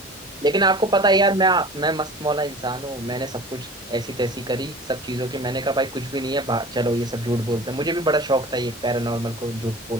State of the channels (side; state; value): both; normal; correlation 0.40